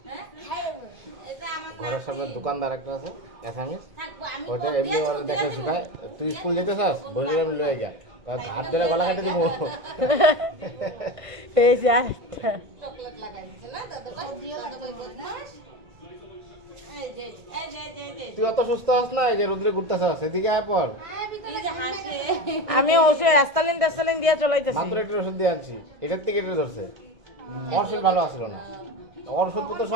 হ্যাঁ? খাই নেব। এটা আমার ঘরের সামনে দোকানদার একটা আছে অ্যাসামিস, থাকবো আমি। ওটা এমনি ওর দেখে শুকায়। তুই স্কুল যেতে চাস, বলে আমি লয়ে যা, হাত ধরে গলা কেটে দিব। এই যে আরেকটা। চকলেট লাগাই দিছে না দাদা ভাই? দাদা ভাই বদমাশ। এই যে এই যে এই যে তুই অত সুস্থ হস না, এই যে রোদ্রে ঘুরতেছাস, এদিকে আয় পর। এই যে হাসে। আমি ওষুধ অ্যাস্তালিন দিয়ে চলাইতেছি। মাত্র একটু ওষুধ দিয়ে আনছি, এটার থেকে এটা ধরছে। ওর শরীর ভালো আসলো না, ওর ওষুধ তো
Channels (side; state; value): left; late; 1.6 ms